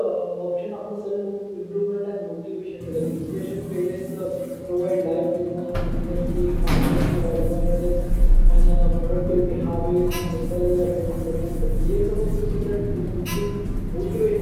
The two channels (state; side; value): identical; both; correlation 1.00